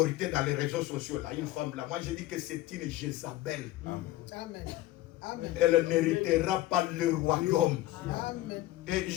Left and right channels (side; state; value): right; quieter; 15.8 dB